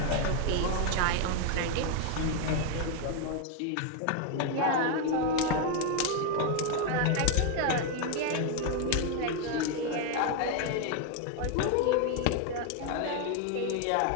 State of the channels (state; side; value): different; both; correlation 0.01